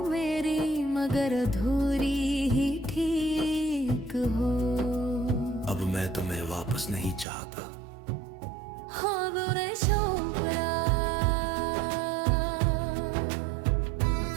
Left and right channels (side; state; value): left; drops out; at 7.2 s